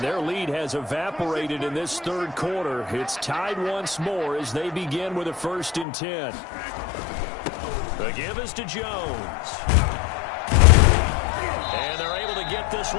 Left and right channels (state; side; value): drops out; right; at 5.9 s